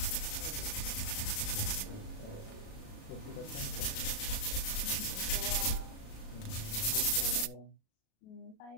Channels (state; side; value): late; right; 36 ms